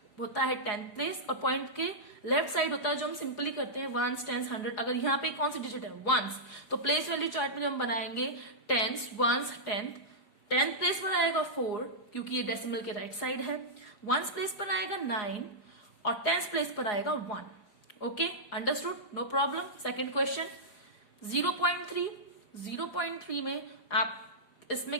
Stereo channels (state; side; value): late; right; 4.8 ms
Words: होता है 10th प्लेस और पॉइंट के लेफ्ट साइड होता है जो हम सिंपली करते हैं 1s, 10s, 100. अगर यहाँ पे कौन सी डिजिट है? 1s. तो प्लेस वैल्यू चार्ट में जब हम बनाएंगे 10s, 1s, 10th प्लेस पर आएगा 4 क्योंकि ये डेसिमल के राइट साइड है. 1s प्लेस पर आएगा 9 और 10th प्लेस पर आएगा 1. Okay, understood, no problem. Second question 0.3. 0.3 में आप